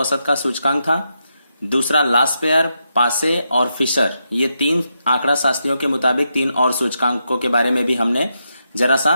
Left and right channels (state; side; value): inverted; both; correlation -0.84